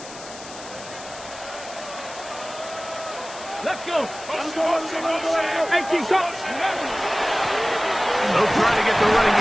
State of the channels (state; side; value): noise; left; hiss, 15 dB below the sound